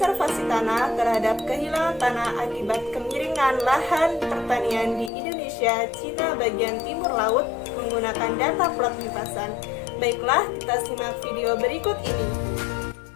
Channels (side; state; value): right; drops out; at 5.1 s